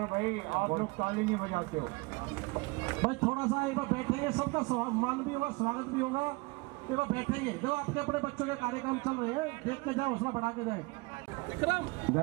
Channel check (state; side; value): quieter; left; 25.8 dB